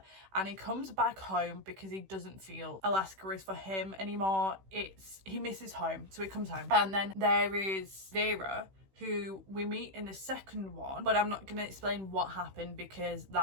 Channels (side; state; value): left; late; 16 ms